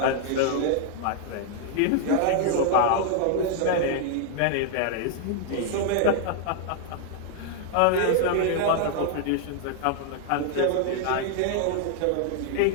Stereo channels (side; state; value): both; different; correlation 0.00